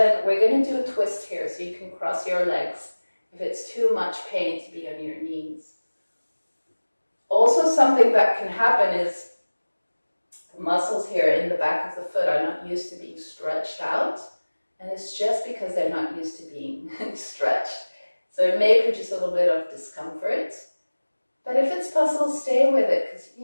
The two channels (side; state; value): both; inverted; correlation -1.00